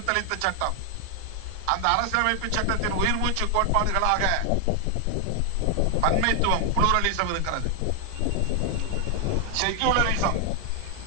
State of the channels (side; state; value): both; different; correlation 0.00